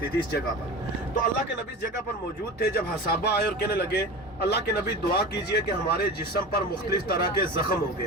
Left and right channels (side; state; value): both; normal; correlation 0.31